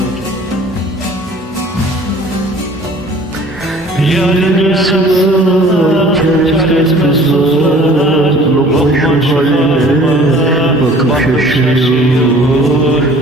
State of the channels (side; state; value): both; normal; correlation 0.50